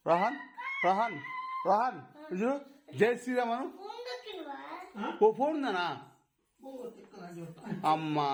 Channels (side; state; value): both; identical; correlation 1.00